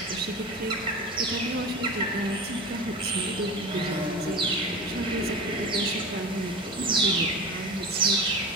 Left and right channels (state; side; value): normal; both; correlation 0.31